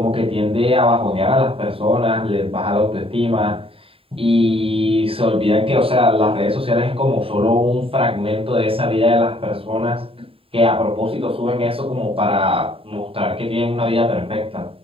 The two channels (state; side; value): late; left; 0.27 ms